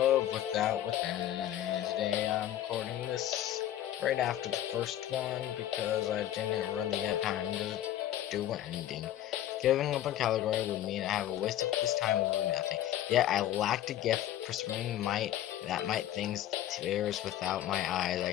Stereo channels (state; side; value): quieter; right; 12.4 dB